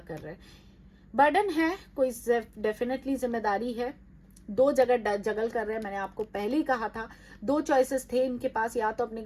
कर रहे हैं, बर्डन है, कोई डेफिनेटली जिम्मेदारी है, 2 जगह जगल कर रहे हैं। मैंने आपको पहले ही कहा था 2 चॉइसेस थे इनके पास, या तो अपने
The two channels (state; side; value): identical; both; correlation 1.00